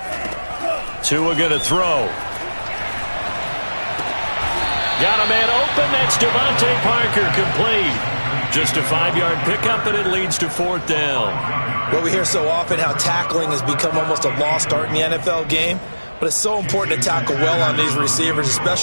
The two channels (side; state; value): both; inverted; correlation -1.00